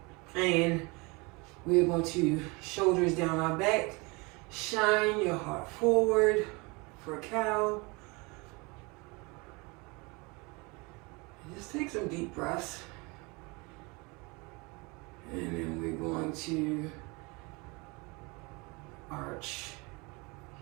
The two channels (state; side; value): quieter; left; 27.2 dB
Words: and we're going to shoulders down our back, shine your heart forward for a cow. And just take some deep breaths. And then we're going to arch.